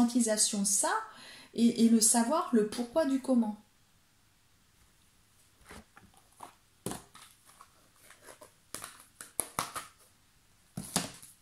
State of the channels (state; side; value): identical; both; correlation 1.00